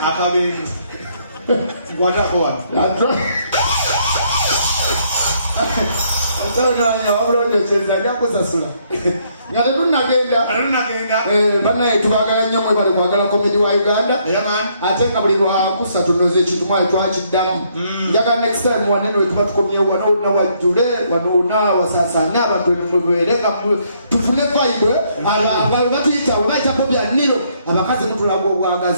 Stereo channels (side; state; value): both; inverted; correlation -0.70